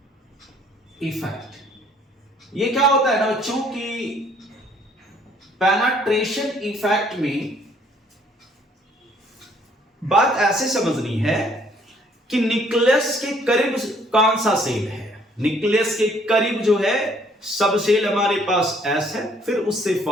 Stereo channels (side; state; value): both; normal; correlation 0.62